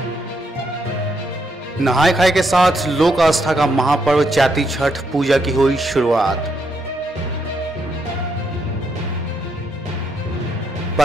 नहाय खाए के साथ लोक आस्था का महापर्व चैती छठ पूजा की हुई शुरुआत।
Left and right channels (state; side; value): normal; both; correlation 0.78